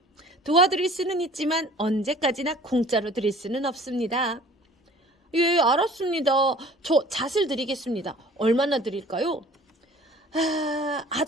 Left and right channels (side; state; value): both; normal; correlation 0.49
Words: 도와드릴 수는 있지만 언제까지나 공짜로 드릴 수는 없습니다. 예, 알았습니다. 저 잣을 드리겠습니다. 얼마나 드릴까요?